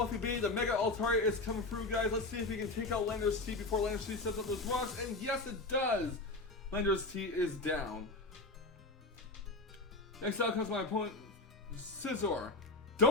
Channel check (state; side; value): quieter; right; 3.1 dB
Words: B, the Mega Altaria is coming through, guys. Let's see if he can take out Lander's T before Lander's T sets up those rocks, and yes, it does! Lander's T is down. Next out comes my opponent, Scizor.